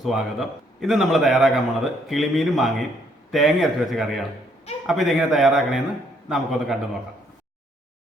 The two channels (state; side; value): normal; both; correlation 0.68